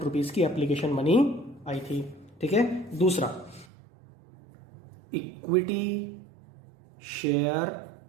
रुपीज की एप्लीकेशन मनी आई थी। ठीक है, दूसरा equity share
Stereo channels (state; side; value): drops out; left; at 3.7 s